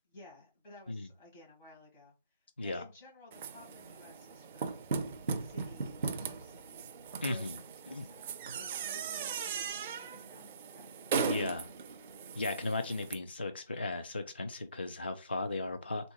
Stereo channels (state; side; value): inverted; both; correlation -0.63